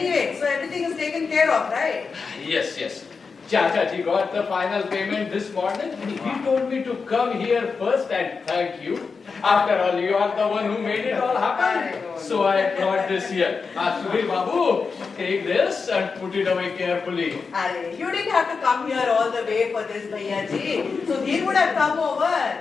so everything is taken care of, right? Yes, yes. Chachaji got the final payment this morning. He told me to come here first and thank you. After all, you are the one who made it all happen. So I brought this here. Subir Babu, take this and put it away carefully. Arey, you didn't have to come here all the way for this, Bhaiya ji. So he would have come over.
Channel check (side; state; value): right; quieter; 5.0 dB